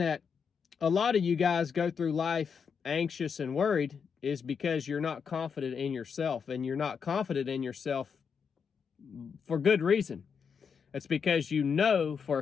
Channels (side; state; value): right; quieter; 6.4 dB